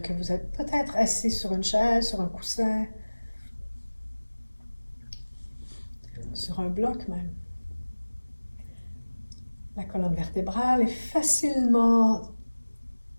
que vous êtes peut-être assis sur une chaise, sur un coussin, sur un bloc même. La colonne vertébrale est facilement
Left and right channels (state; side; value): inverted; both; correlation -1.00